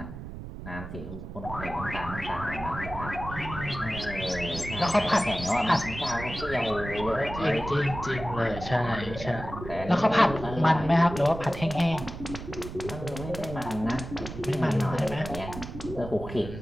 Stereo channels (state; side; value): noise; right; rumble, 10 dB below the sound